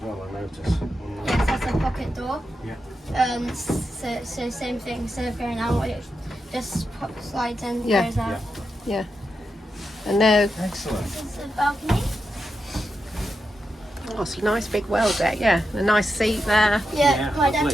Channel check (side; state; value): both; normal; correlation 0.87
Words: well, I noticed. Yes, that's a pocket door. Yeah. So same thing, instead of going out, it just slides in, Yeah. goes out. Yeah. And now, Excellent. This is the balcony. oh, it's a nice big well deck. Yeah, a nice seat there. Yeah, Yeah, my dad